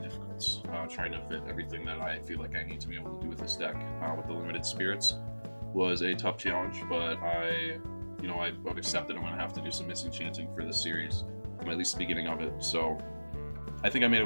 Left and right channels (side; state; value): both; inverted; correlation -1.00